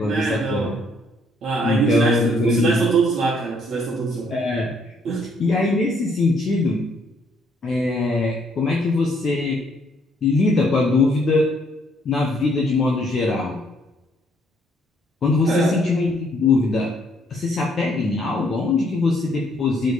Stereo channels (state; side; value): normal; both; correlation 0.67